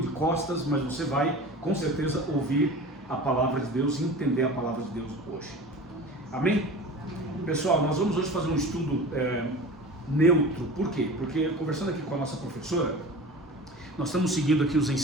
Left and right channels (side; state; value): both; normal; correlation 0.36